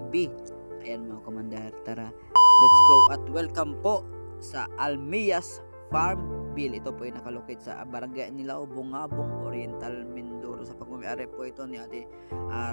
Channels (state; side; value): inverted; both; correlation -1.00